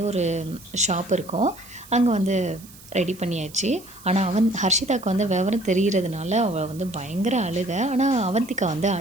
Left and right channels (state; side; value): noise; right; hiss, 21 dB below the sound